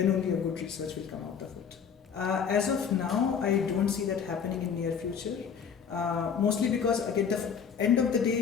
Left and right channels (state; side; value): quieter; right; 7.0 dB